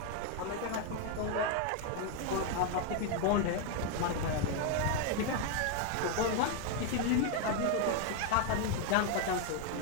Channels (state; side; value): different; both; correlation 0.01